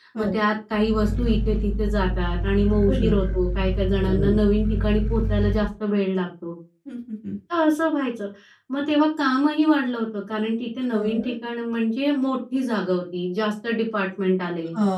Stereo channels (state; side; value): identical; both; correlation 1.00